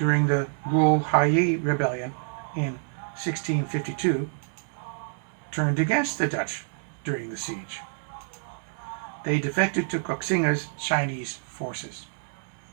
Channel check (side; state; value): left; silent; 58 dB below the other